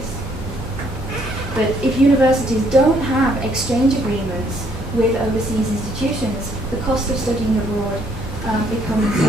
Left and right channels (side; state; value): both; normal; correlation 0.68